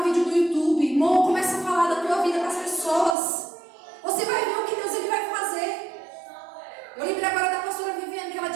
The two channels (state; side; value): drops out; left; at 3.2 s